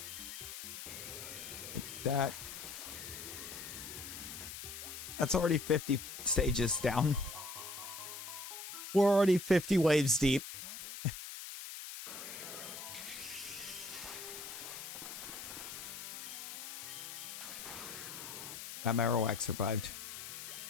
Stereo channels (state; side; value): noise; left; hiss, 9 dB below the sound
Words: That's already 50 stages down. We're already 50 waves deep. That Marowak survived.